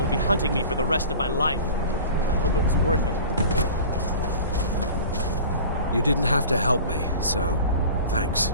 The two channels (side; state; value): both; inverted; correlation -0.39